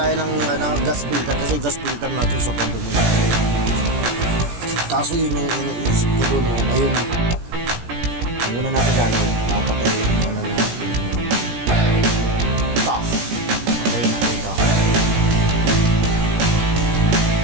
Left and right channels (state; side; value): late; left; 17 ms